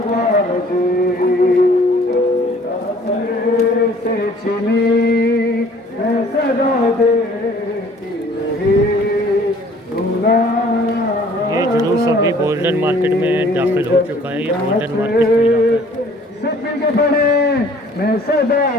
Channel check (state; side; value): normal; both; correlation 0.55